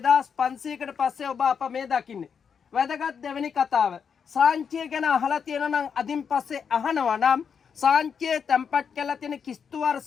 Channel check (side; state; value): right; quieter; 6.8 dB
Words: පස්සේ ඔබ අප මේ දකින්නේ. වැදගත් දෙවෙනි කතාව. සාංචිය ගැන අහලා තියෙනවා නම් අදින් පස්සේ අහනවා නම් සාංචියේ තැන්පත් කළා තියෙන කිස්තු